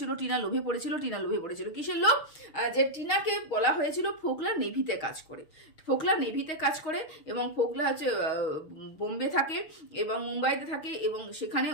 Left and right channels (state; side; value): late; right; 6.4 ms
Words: টিনা লোভে পড়েছিল, টিনা লোভে পড়েছিল। কিসের লোভ? যে টিনাকে বলা হয়েছিল ফোকলা নেভিতে কাজ করে, ফোকলা নেভিতে কাজ করে, এবং ফোকলা হচ্ছে বোম্বে থাকে এবং মুম্বাইতে থাকে, এবং সেখানে